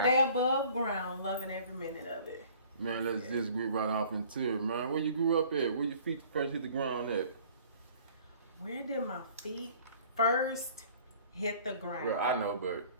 day above ground. Loving every minute of it. Man, let's just get right off into it, man. Where you grew up at? Where your feet first hit the ground at? Where did my feet first hit the ground? Well, I know, but...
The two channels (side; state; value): both; inverted; correlation -0.52